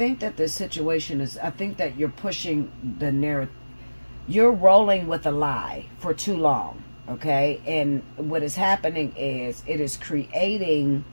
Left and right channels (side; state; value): both; inverted; correlation -1.00